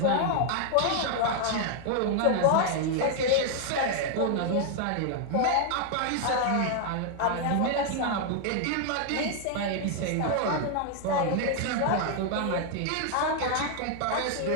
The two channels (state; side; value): different; both; correlation 0.00